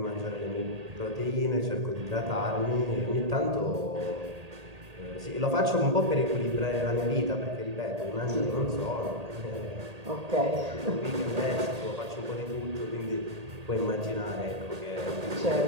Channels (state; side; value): late; left; 1.8 ms